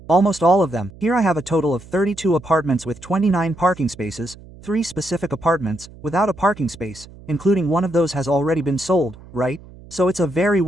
almost all of them. Here I have a total of 32 apartments with 29 parking spaces, 3 specific apartments without a parking space, including one of those has already been sold, right? So it's a very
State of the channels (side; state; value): right; noise; hum, 20 dB below the sound